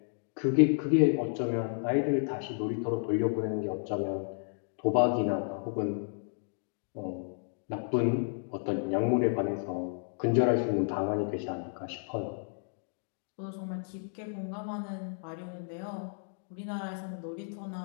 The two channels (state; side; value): silent; right; digital silence